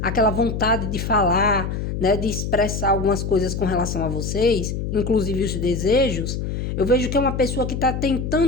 aquela vontade de falar, né? De expressar algumas coisas com relação a vocês, inclusive os desejos, eu vejo que é uma pessoa que tá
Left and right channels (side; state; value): left; noise; hum, 3 dB below the sound